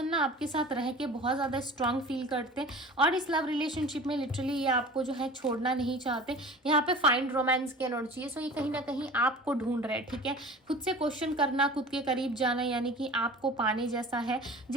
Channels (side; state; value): both; normal; correlation 0.40